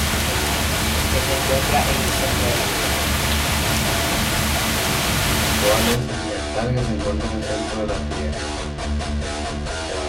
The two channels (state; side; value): identical; both; correlation 1.00